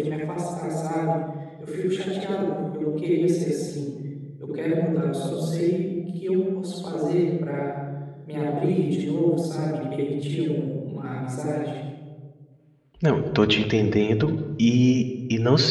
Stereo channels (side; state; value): both; identical; correlation 1.00